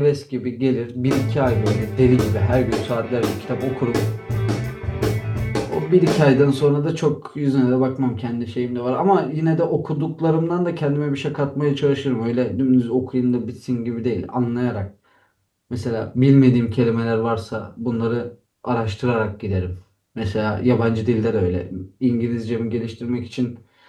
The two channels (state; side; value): identical; both; correlation 1.00